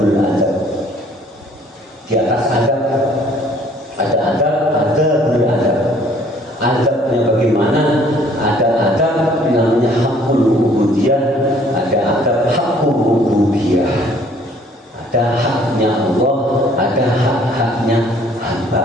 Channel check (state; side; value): normal; both; correlation 0.58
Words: adab. Di atas adab ada adabul adab. Adabnya bagaimana? Ada adab namanya hakul ubudiyah, ada adab hakul rububiyah. Ada haknya Allah, ada hak-haknya hamba.